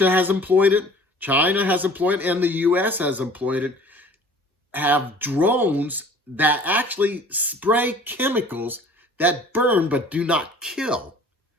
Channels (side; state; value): both; normal; correlation 0.48